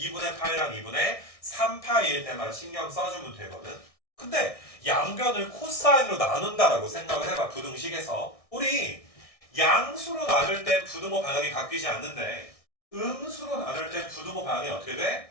파이랑 2분의 3파이일 때만 신경 써주면 되거든. 근데 양변을 코사인으로 나눈다라고 생각을 해봐. 부등식에서 우리 양수로 나눌 때 부등호 방향이 바뀌지 않는데 음수로 나눌 때 부등호 방향이 어떻게 돼?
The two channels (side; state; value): right; late; 1.6 ms